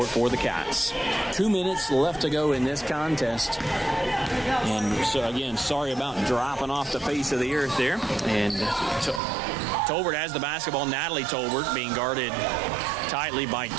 for the Cats. 2 minutes left to go in this contest. And so, again, sorry about dropping off the face of the earth there. And Tolbert has the basketball. Natalie Tolbert being guarded tightly by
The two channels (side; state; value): left; drops out; at 9.2 s